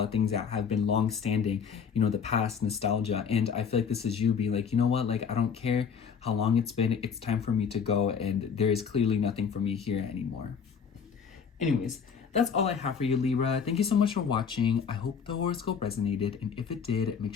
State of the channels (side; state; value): right; quieter; 6.6 dB